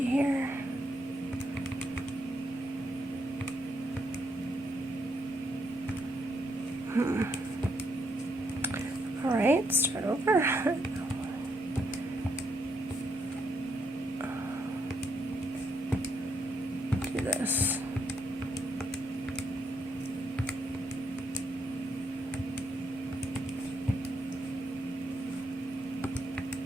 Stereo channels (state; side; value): normal; both; correlation 0.77